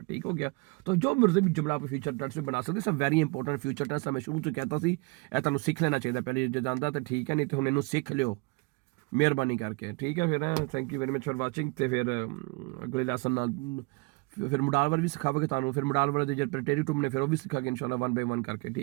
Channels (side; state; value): left; quieter; 27.4 dB